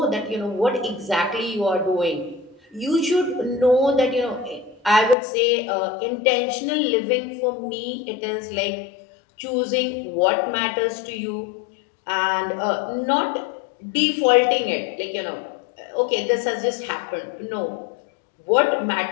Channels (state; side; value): drops out; right; at 5.2 s